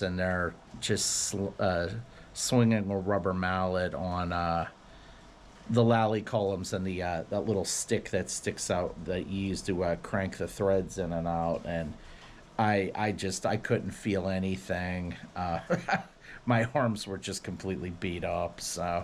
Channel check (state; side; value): identical; both; correlation 1.00